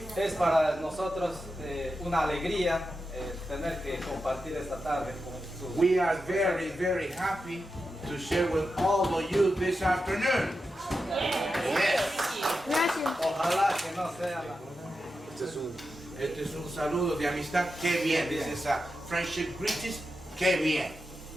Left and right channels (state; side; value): normal; both; correlation 0.89